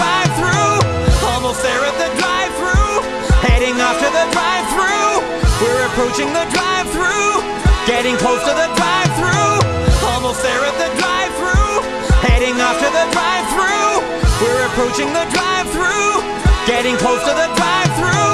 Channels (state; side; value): identical; both; correlation 1.00